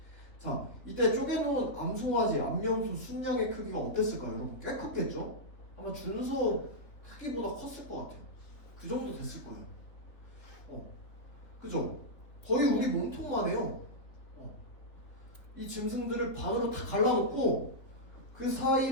자, 이때 쪼개놓은 암송아지, 암염소 순양의 크기가 어땠을까요? 여러분 꽤 컸겠죠? 아마 준소 크기보다 컸을 것 같아요. 그 정도 됐을 거예요. 그죠? 거의 우리 몸통만 해요. 이 짐승들을 반으로 다 갈라놓고 그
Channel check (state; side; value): late; right; 3.4 ms